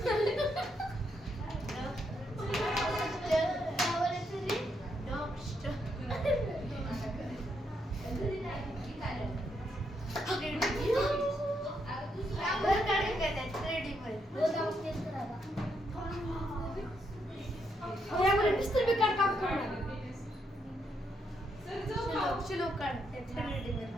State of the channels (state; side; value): normal; both; correlation 0.78